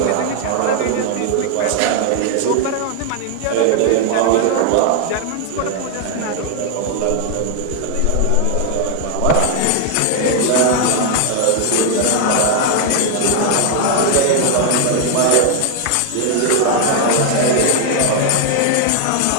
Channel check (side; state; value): both; different; correlation 0.00